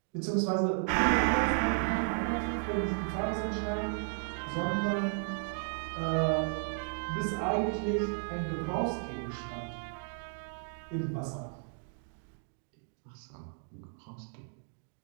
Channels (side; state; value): left; silent; 55 dB below the other